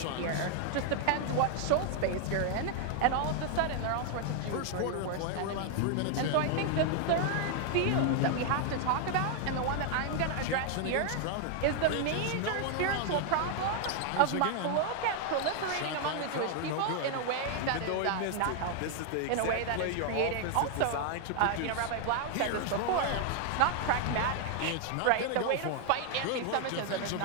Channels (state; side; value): different; both; correlation 0.00